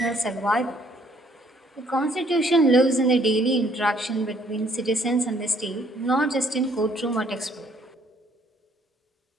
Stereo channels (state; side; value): normal; both; correlation 0.64